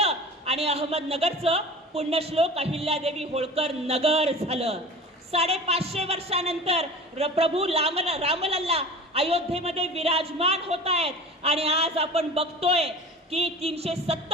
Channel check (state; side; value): normal; both; correlation 0.37